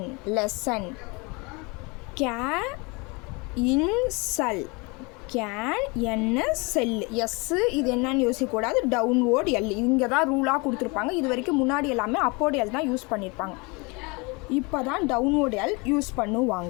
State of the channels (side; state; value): right; quieter; 28.3 dB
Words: lesson. இன்சல், கேன் என்ன செல். எஸ்ஸு இது என்னன்னு யோசிக்கக்கூடாது. டவுன்வோர்ட் எல் இங்கே தான் ரூலாக கொடுத்துருப்பாங்க. இது வரைக்கும் முன்னாடி எல்லாமே அப்போர்ட் எல் தான் யூஸ் பண்ணியிருப்பாங்க. இப்போ தான் டவுன்வோர்ட் எல் யூஸ்